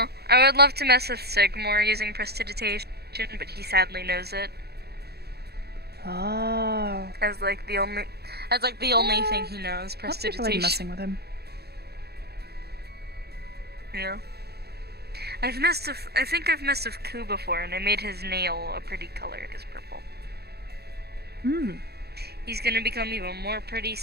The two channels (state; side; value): late; left; 0.47 ms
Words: I would love to mess with Sigmore using prestidigitation, but he sadly knows it Oh. as like the only thing he knows. Lots of people like Prestidigitation. messing with him. Yeah. I think I've messed with Ku before, and I made his nail a pretty color as purple. He's gonna become even more pretty